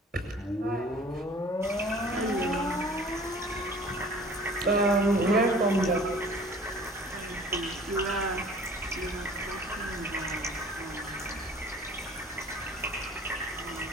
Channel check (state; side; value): normal; both; correlation 0.48